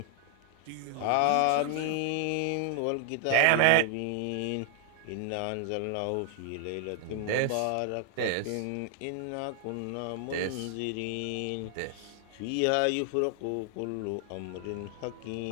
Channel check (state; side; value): different; both; correlation 0.00